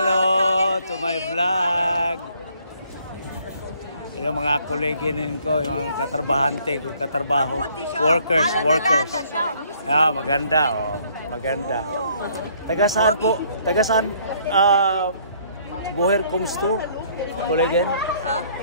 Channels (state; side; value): inverted; both; correlation -0.63